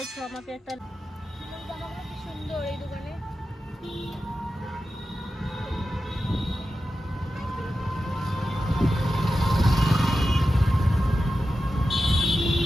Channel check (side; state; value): both; normal; correlation 0.92